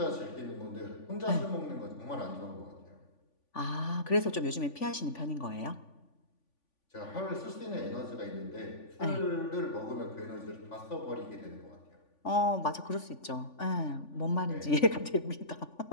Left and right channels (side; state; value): right; late; 3.5 ms